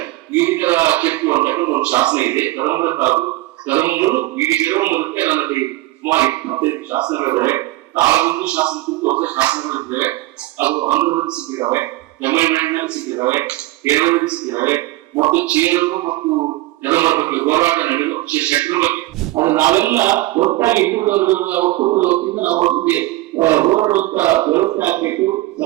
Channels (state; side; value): quieter; left; 18.6 dB